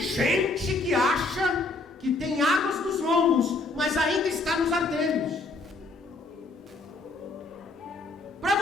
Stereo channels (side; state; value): right; quieter; 3.2 dB